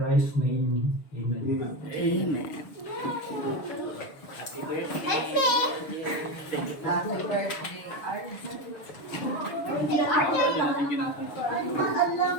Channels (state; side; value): late; right; 6.6 ms